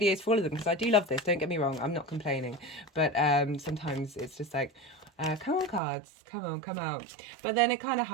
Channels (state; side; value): drops out; left; at 5.8 s